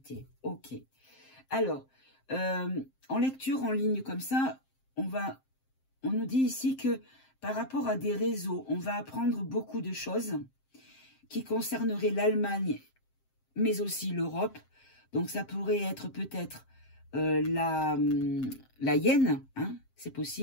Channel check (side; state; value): right; late; 7.6 ms